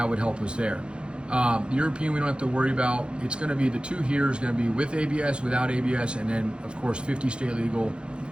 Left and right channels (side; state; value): left; late; 0.055 ms